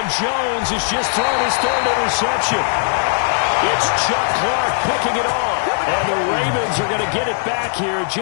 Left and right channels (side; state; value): right; silent; digital silence